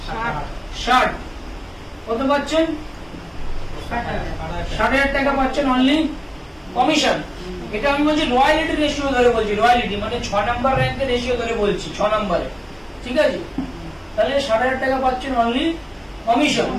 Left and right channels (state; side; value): identical; both; correlation 1.00